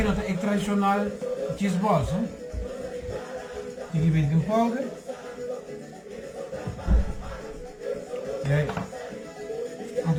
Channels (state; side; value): identical; both; correlation 1.00